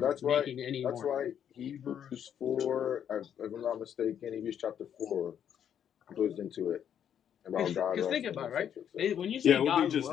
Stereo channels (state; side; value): quieter; right; 9.1 dB